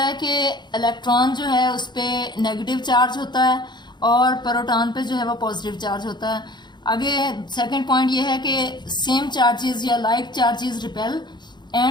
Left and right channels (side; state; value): right; late; 0.21 ms